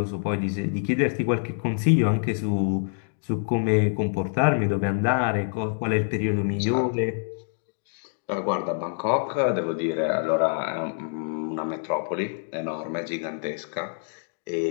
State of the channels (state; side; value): silent; right; digital silence